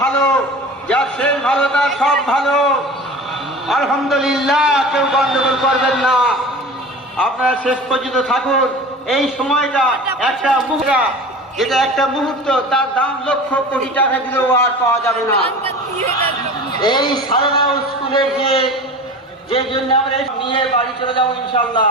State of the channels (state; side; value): normal; both; correlation 0.36